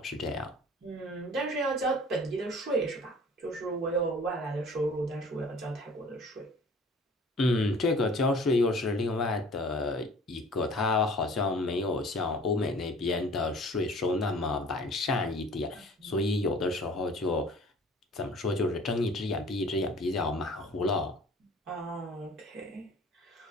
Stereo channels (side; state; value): both; normal; correlation 0.47